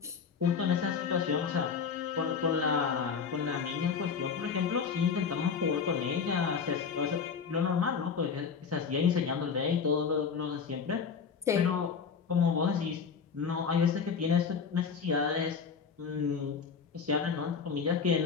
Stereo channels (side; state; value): right; quieter; 6.1 dB